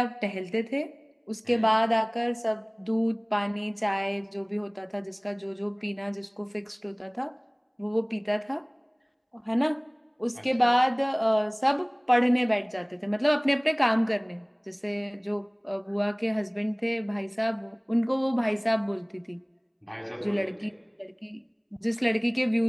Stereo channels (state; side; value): identical; both; correlation 1.00